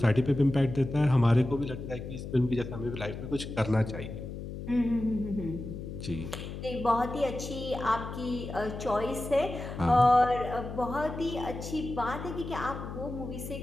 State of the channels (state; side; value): noise; left; hum, 8 dB below the sound